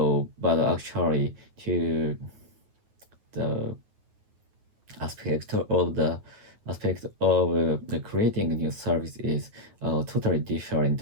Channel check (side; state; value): left; late; 9.4 ms